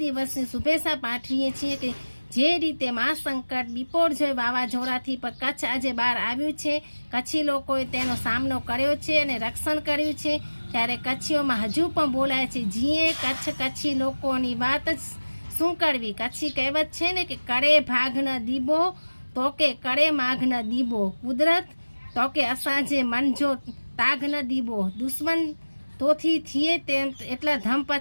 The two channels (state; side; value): inverted; both; correlation -1.00